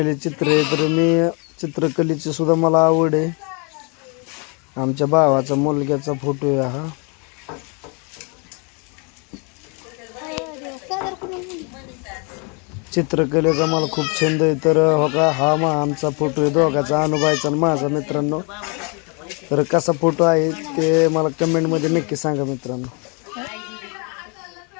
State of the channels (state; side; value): quieter; right; 33.6 dB